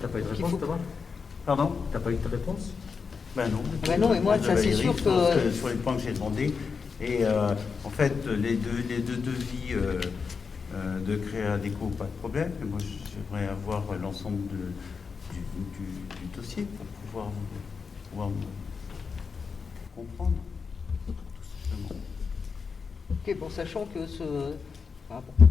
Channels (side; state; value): right; quieter; 5.4 dB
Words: pas eu de réponse, Thomas? Pardon? T'as pas eu de réponse? Ben non. Ben non, et moi, ça c'est sûr que... Sur les points que j'ai demandés. Et en fait, les deux devis de Créa Déco, pas de problème. Mais moi, j'aimerais avoir l'ensemble du dossier pour pouvoir comprendre, tout simplement. Ok, bon, sachant que